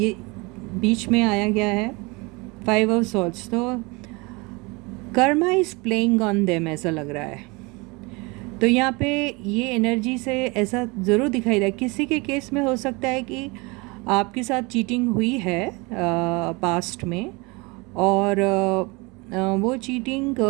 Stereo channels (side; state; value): left; quieter; 26.5 dB